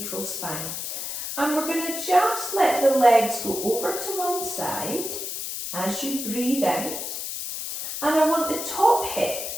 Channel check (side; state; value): left; noise; hiss, 5 dB below the sound